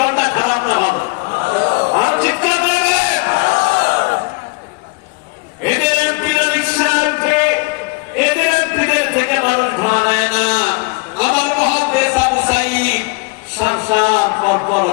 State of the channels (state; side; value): quieter; right; 28.2 dB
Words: খারাপ না ভালো? আর চিৎকার দেবে। এদের এমপিরা রিকশা উঠে, এদের এমপিদের থেকে মানুষ ভাড়া নেয় না। আমার মহাদেশ আবু সাঈদ সাংসার পরপর